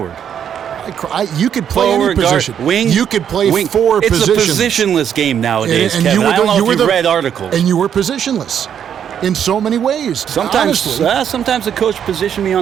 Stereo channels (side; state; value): left; quieter; 8.7 dB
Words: You could play forward, any position. Guard, wing, you could play wing. 4 positions. It's a positionless game nowadays, and Kevin. I don't know if you you've read articles. And you were positionless. in so many ways. Sometimes the coach positioned me